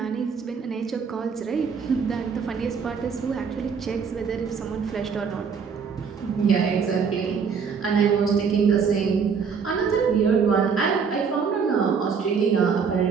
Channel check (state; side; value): quieter; left; 6.0 dB